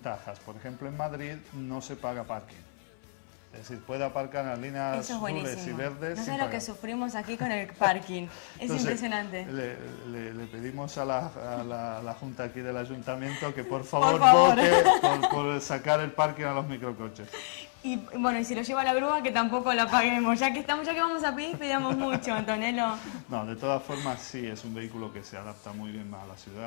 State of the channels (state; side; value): silent; right; 58 dB below the other